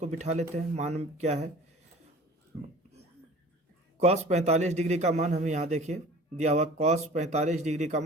बिठा लेते हैं। मान क्या है? cos 45 डिग्री का मान हमें यहाँ देखिए दिया हुआ। cos 45 डिग्री का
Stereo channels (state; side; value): normal; both; correlation 0.44